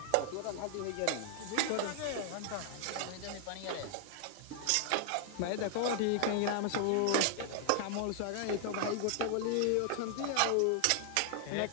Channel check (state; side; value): different; both; correlation 0.00